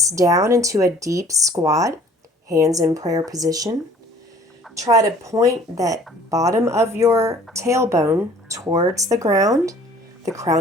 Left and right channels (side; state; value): both; normal; correlation 0.52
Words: down into a deep squat. Hands in prayer position. Try to point that bottom of your tailbone towards the ground, the